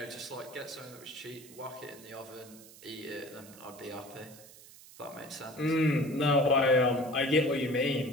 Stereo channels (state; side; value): noise; right; hiss, 20 dB below the sound